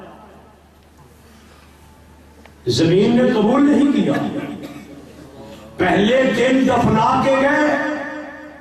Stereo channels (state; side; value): identical; both; correlation 1.00